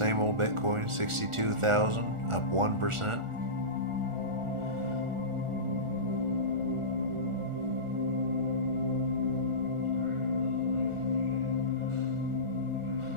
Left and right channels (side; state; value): left; late; 1.4 ms